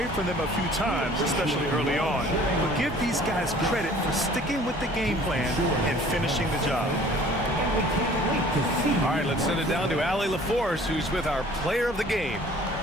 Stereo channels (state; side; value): normal; both; correlation 0.51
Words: from them a few times, especially early on. But give these guys credit for sticking with the game plan and finishing the job. All right, let's send it down to Allie LaForce, who's with our player of the game.